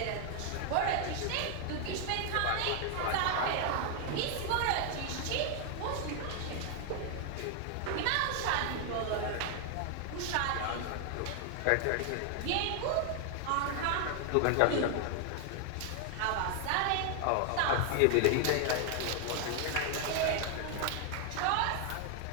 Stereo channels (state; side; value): different; both; correlation 0.00